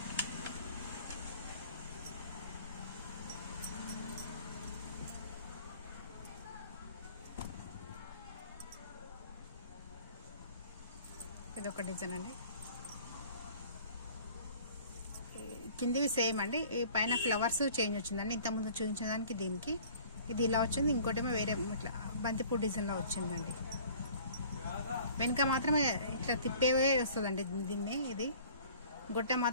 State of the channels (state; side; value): inverted; both; correlation -0.50